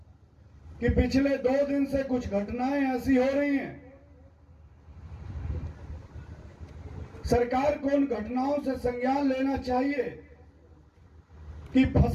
कि पिछले 2 दिन से कुछ घटनाएं ऐसी हो रही हैं, सरकार को उन घटनाओं से संज्ञान लेना चाहिए कि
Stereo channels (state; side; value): identical; both; correlation 1.00